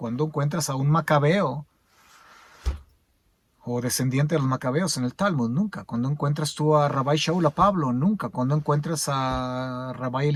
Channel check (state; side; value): identical; both; correlation 1.00